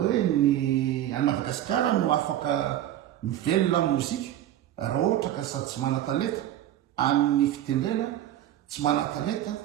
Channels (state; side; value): quieter; left; 12.4 dB